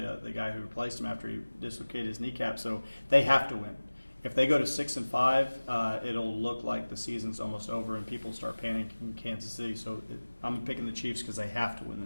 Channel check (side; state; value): both; inverted; correlation -1.00